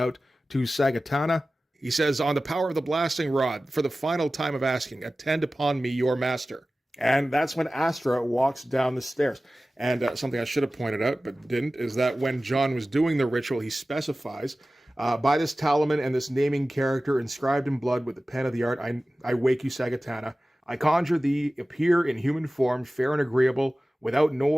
to Sagatana. He says, on the power of the blasting rod, for the final time of asking, attend upon me, your master. And that's when Astra walks down the stairs. And something I should have pointed out, but didn't, is that when John was doing the ritual, he specifies, by this talisman and this naming character inscribed in blood with the pen of the art, I wake you, Sagatana. I conjure thee, appear in human form, fair and agreeable, without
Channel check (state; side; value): normal; both; correlation 0.96